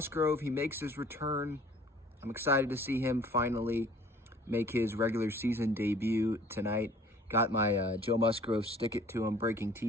he makes his return. I'm excited to see him finally make his regular season debut tonight. Got my Joe Musgrove Stick It To Him Breaking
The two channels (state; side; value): normal; both; correlation 0.52